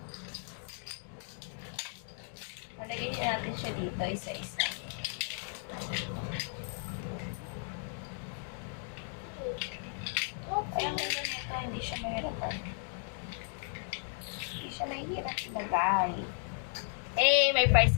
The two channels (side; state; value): right; silent; 54 dB below the other